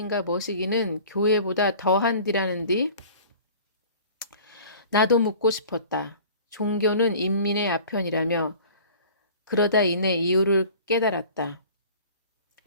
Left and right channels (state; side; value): inverted; both; correlation -0.45